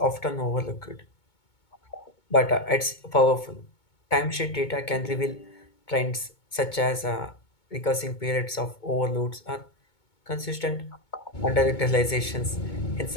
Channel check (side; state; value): right; late; 2.2 ms